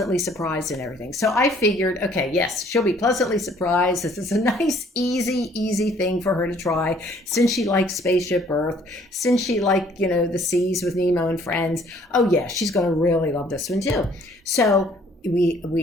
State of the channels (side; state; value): both; normal; correlation 0.60